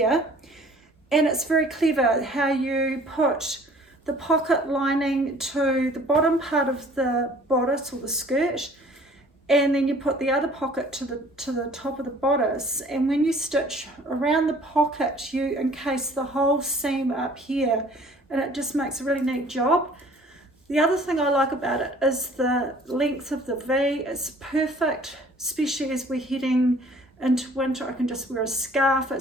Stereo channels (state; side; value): normal; both; correlation 0.52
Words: And it's very clever how you put the pocket lining to the bottom part of the bodice or the skirt, and then you put the other pocket to the top of the bodice, and when you stitch around the pocket you encase the whole seam up here, and it just makes a really neat job. The other thing I like about it is the length of the V. It's perfect, especially as we're heading into winter. I can just wear a scarf,